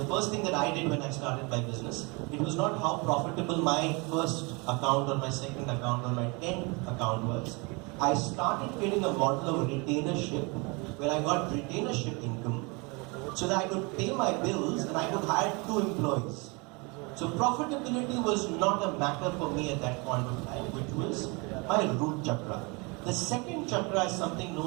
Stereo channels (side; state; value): left; quieter; 28.9 dB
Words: first thing that I did when I started my business, it was not how profitable my first account or my second account or my 10th account was. I started creating a model of retainership where I got retainership income so that I could pay my bills and I could hire 2 employees. So profitability was not a matter for me at that point of time, which was my root chakra. The second chakra is something